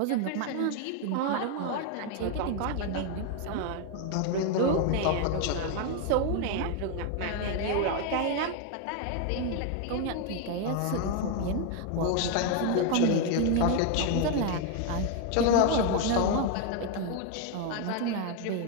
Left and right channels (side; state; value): both; different; correlation 0.01